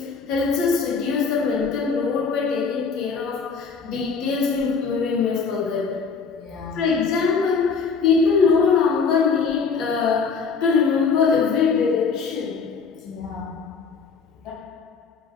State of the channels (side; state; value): right; quieter; 5.3 dB